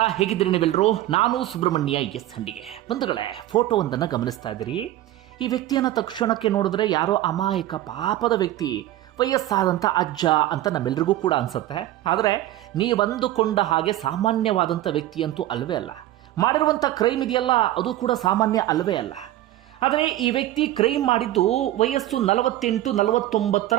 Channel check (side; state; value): left; quieter; 14.4 dB